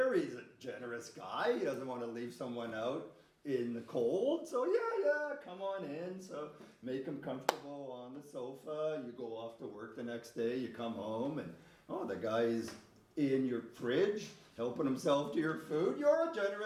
a generous guy. He doesn't want to leave someone out in the cold. So yeah, come on in. So make him comfortable on the sofa. You go off to work the next day. You come home and, oh, the guy's in your fridge helping himself to your food. You're a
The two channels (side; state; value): both; identical; correlation 1.00